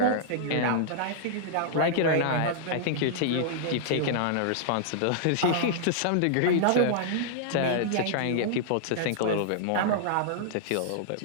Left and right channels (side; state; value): both; different; correlation -0.01